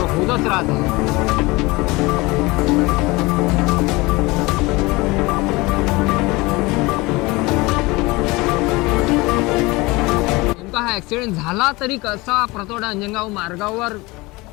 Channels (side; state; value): right; quieter; 22.9 dB